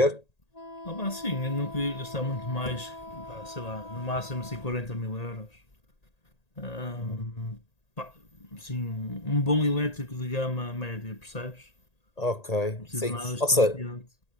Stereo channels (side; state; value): right; late; 1.8 ms